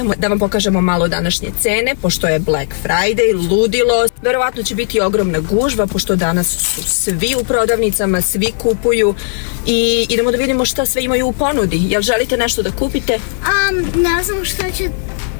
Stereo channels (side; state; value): right; silent; digital silence